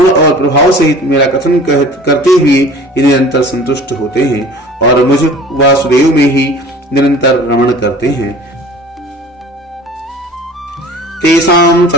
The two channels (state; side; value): normal; both; correlation 0.45